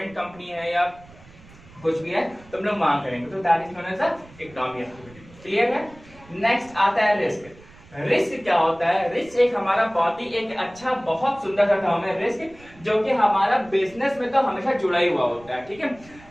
कंपनी है या कुछ भी है तो हम लोग वहां करेंगे, तो that is known as economic activity. Clear है। नेक्स्ट आता है रिस्क। रिस्क क्या होता है, रिस्क एक हमारा बहुत ही एक अच्छा, बहुत सुंदर सा टर्म है रिस्क, जो कि हमारा बिजनेस में तो हमेशा जुड़ा ही हुआ होता है। ठीक है,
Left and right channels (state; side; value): noise; right; rumble, 23 dB below the sound